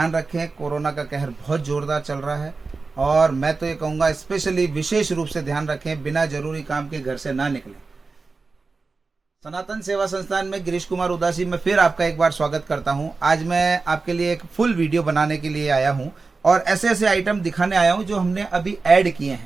रखें, कोरोना का कहर बहुत ज़ोरदार चल रहा है और मैं तो ये कहूँगा स्पेशली विशेष रूप से ध्यान रखें, बिना जरूरी काम के घर से ना निकलें। सनातन सेवा संस्थान में गिरीश कुमार उदासी में फिर आपका एक बार स्वागत करता हूं। आज मैं आपके लिए एक फुल वीडियो बनाने के लिए आया हूं और ऐसे ऐसे आइटम दिखाने आया हूं जो हमने अभी ऐड किए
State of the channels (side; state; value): left; quieter; 4.1 dB